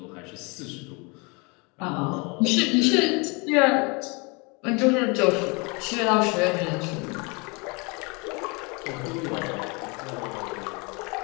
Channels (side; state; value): right; quieter; 29.7 dB